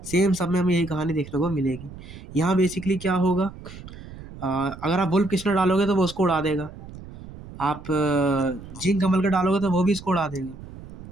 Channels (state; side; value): noise; right; rumble, 15 dB below the sound